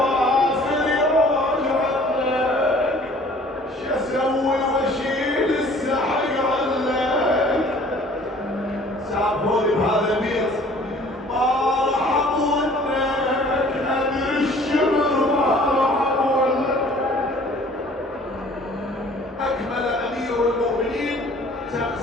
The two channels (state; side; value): normal; both; correlation 0.52